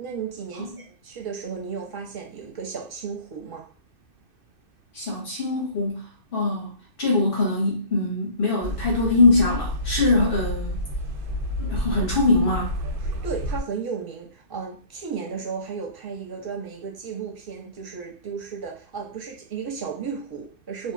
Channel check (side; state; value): right; late; 2.6 ms